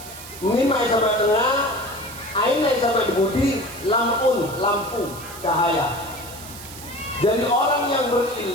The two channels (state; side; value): noise; right; hiss, 14 dB below the sound